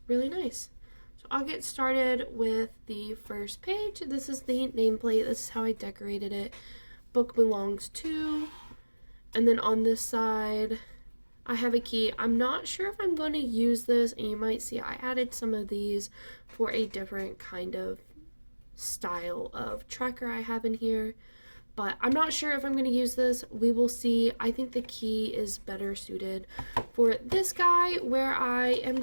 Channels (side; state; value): both; inverted; correlation -1.00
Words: really nice. So I'll get started with the first page. This is the nameplate. This is how I decorated it. Book belongs to. And then on this side, I have a key. I'm not sure if I'm going to use this, and you might see I added some of these for a different kind of style of tracker I have in here. But I'm not sure if I'm going to use this. We will see. I think the key is better suited for this guy, where I